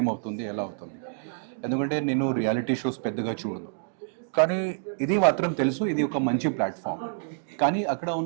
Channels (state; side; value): silent; left; digital silence